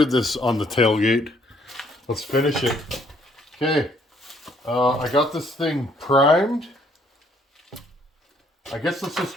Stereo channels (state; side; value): normal; both; correlation 0.66